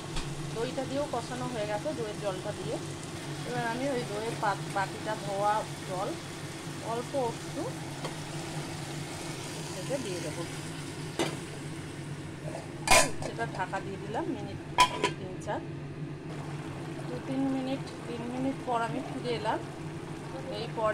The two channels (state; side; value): identical; both; correlation 1.00